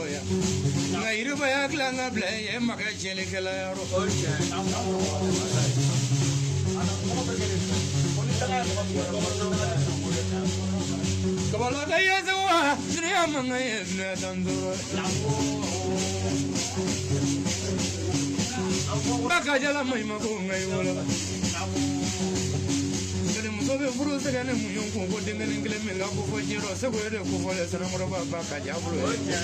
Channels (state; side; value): identical; both; correlation 1.00